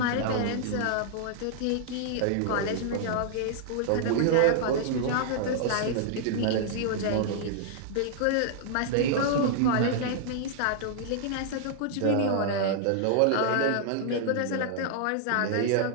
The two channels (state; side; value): different; both; correlation -0.01